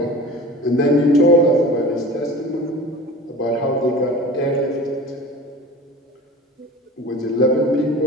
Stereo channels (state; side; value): normal; both; correlation 0.38